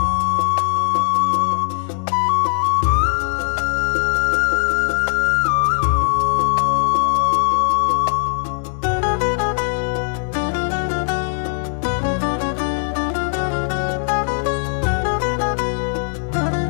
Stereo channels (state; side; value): silent; right; digital silence